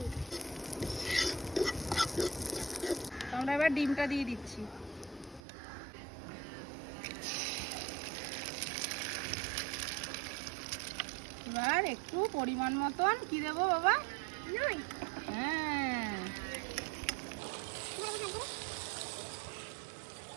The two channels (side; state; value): left; drops out; at 5.4 s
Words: আমরা এবার ডিমটা দিয়ে দিচ্ছি। এবার একটু পরিমাণ মতন কি দেবো বাবা? হ্যাঁ,